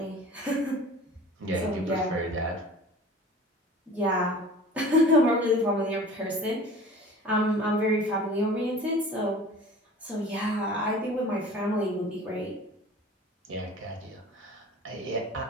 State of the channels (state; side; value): normal; both; correlation 0.42